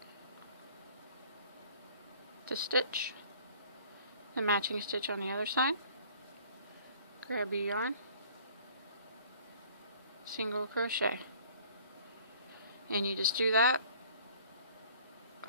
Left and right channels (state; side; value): inverted; both; correlation -0.52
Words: The stitch, the matching stitch on the other side, grab your yarn, single crochet. And you just do that